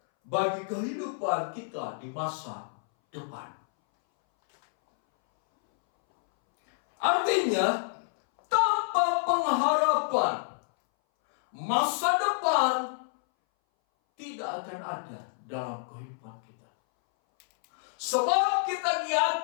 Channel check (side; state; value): right; silent; 59 dB below the other